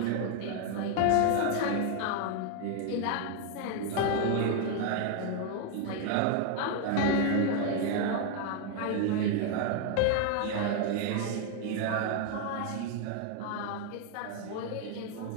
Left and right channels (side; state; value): both; different; correlation 0.00